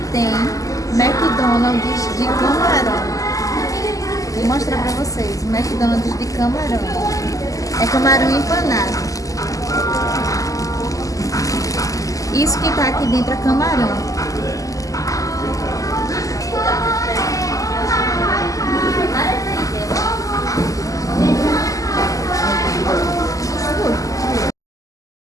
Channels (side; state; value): right; late; 0.16 ms